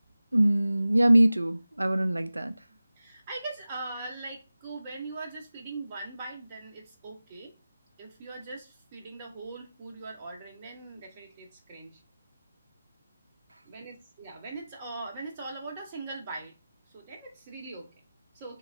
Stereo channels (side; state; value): both; inverted; correlation -0.97